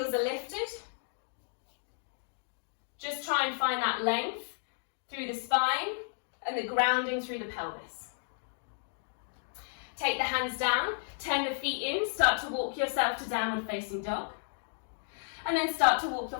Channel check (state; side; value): silent; right; digital silence